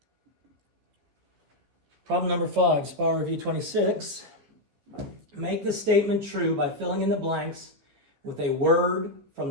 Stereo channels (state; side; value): late; left; 14 ms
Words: Problem number 5, Spiral Review 26. Make the statement true by filling in the blanks with a word from